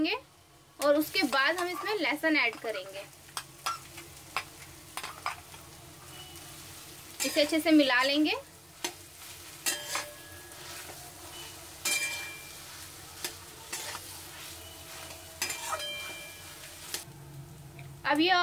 और उसके बाद हम इसमें लहसुन ऐड करेंगे। इसे अच्छे से मिला लेंगे। अब ये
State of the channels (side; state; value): both; identical; correlation 1.00